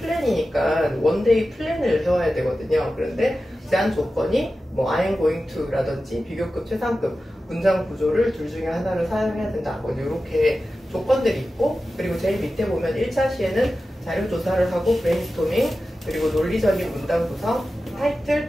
원데이 플랜을 세워야 되거든요. 그런데 제한 조건이 뭐 I am going to 라든지 비교급, 최상급 문장 구조를 둘 중에 하나를 사용해야 된다, 뭐 이렇게 조건들이 있고, 그리고 제일 밑에 보면 1차 시에는 자료조사를 하고 브레인스토밍, 그리고 논리적인 문장 구성, 타이틀,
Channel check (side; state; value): both; normal; correlation 0.93